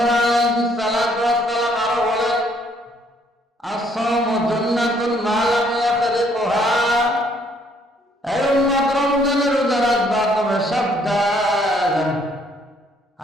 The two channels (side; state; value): both; normal; correlation 0.66